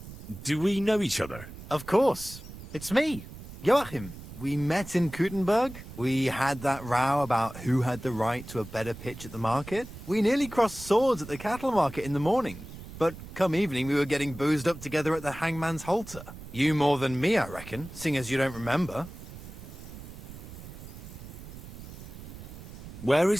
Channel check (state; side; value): noise; right; rumble, 14 dB below the sound